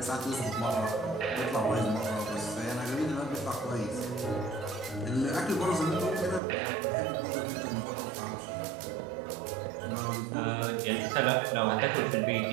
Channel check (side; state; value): left; drops out; at 6.4 s